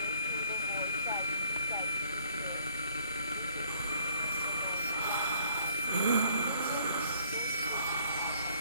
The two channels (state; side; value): inverted; both; correlation -0.63